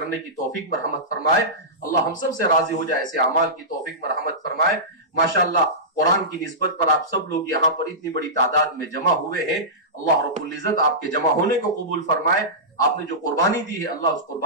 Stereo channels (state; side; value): normal; both; correlation -0.17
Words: کی توفیق مرحمت فرمائے۔ اللہ ہم سب سے راضی ہو جائے، ایسے اعمال کی توفیق مرحمت فرمائے۔ ماشاءاللہ قرآن کی نسبت پر آپ سب لوگ یہاں پر اتنی بڑی تعداد میں جمع ہوئے ہیں، اللہ رب العزت آپ کے جمع ہونے کو قبول فرمائے۔ آپ نے جو قربانی دی ہے اللہ اس